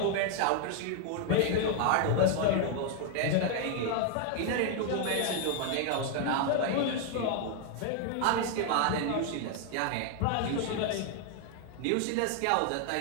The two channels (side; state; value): both; different; correlation 0.01